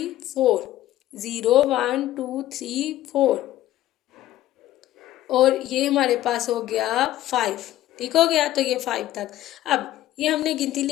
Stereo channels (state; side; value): quieter; right; 14.2 dB